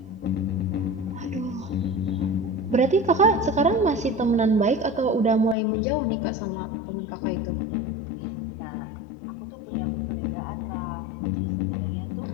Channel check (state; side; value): drops out; right; at 5.6 s